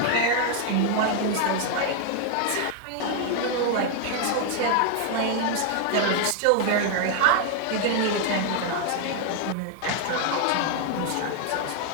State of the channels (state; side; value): different; both; correlation 0.00